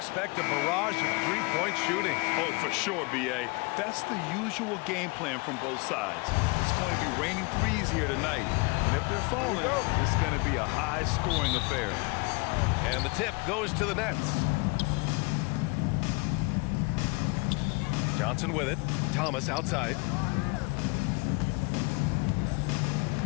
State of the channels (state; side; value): quieter; right; 28.3 dB